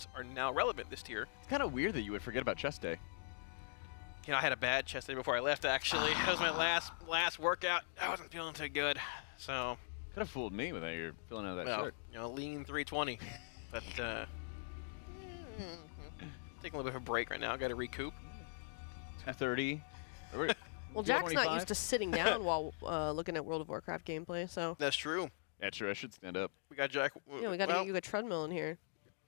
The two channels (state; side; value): silent; right; digital silence